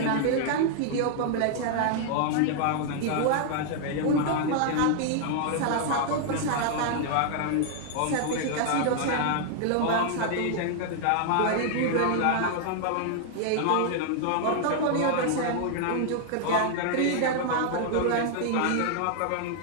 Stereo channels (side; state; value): both; different; correlation 0.00